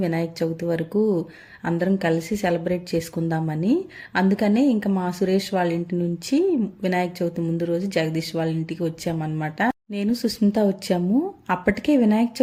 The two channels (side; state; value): both; identical; correlation 1.00